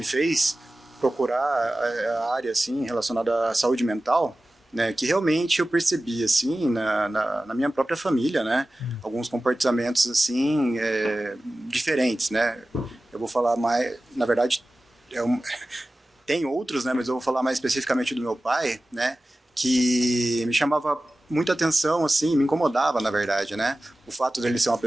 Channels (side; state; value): both; normal; correlation 0.96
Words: fez procurar a área assim relacionada à saúde mental, né, que realmente eu percebi assim na minha própria família, né, alguns comportamentos assim diferentes, né. Eu vou falar mais, na verdade, tem outros, né, mas eu vou falar mais especificamente do meu pai, né, que me chamava muita atenção, assim, me incomodava, na verdade, né, o fato dele ser uma